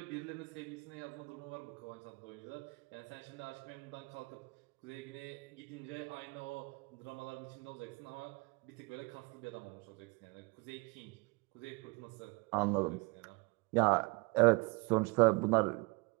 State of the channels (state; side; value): quieter; left; 27.9 dB